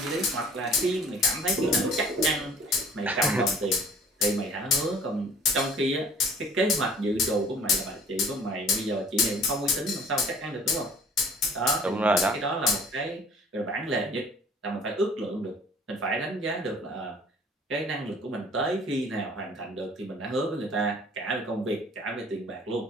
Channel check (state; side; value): normal; both; correlation 0.51